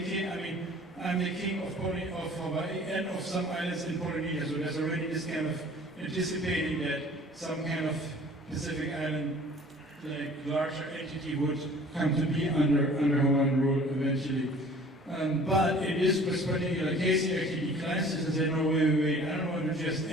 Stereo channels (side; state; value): both; normal; correlation 0.49